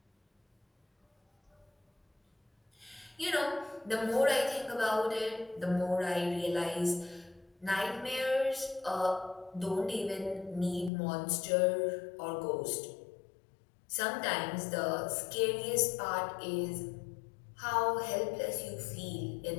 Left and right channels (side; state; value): right; drops out; at 10.9 s